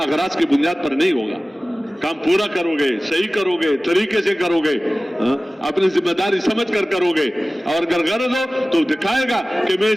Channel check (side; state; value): both; normal; correlation 0.97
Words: اغراض کی بنیاد پر نہیں ہوگا. کام پورا کرو گے, صحیح کرو گے, طریقے سے کرو گے, اپنی ذمہ داری سمجھ کر کرو گے. اور اگر غرض ہو تو دکھائے گا کہ میں